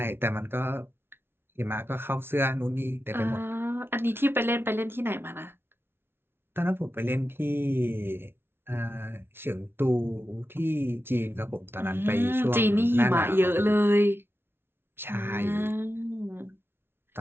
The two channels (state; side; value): late; left; 0.11 ms